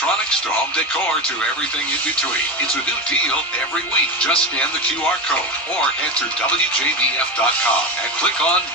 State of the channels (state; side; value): normal; both; correlation 0.19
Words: to home decor to everything in between. It's a new deal every week. Just scan the QR code or head to WJBF.com and click on